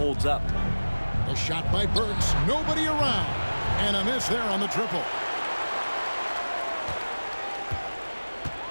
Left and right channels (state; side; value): inverted; both; correlation -1.00